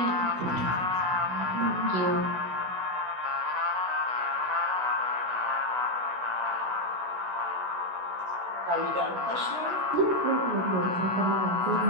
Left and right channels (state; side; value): late; left; 16 ms